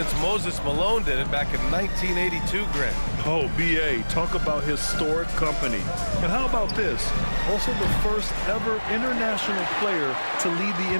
Moses Malone did it back in 1982, Grant. Oh, B.A., talk about historic company. And how about this? Also the first ever international player to lead the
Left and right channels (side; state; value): both; inverted; correlation -1.00